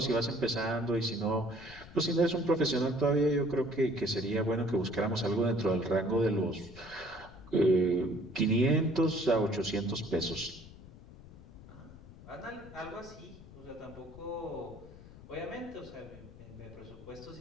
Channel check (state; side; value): noise; left; rumble, 18 dB below the sound